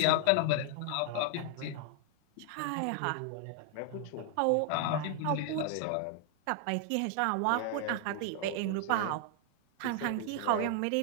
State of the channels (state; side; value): different; both; correlation 0.00